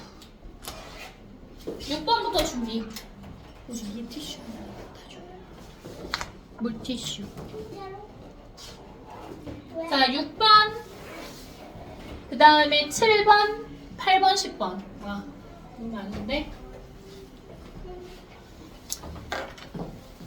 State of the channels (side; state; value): both; identical; correlation 1.00